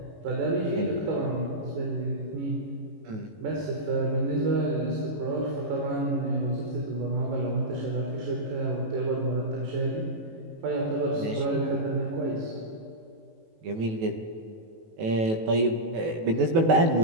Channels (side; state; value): left; late; 18 ms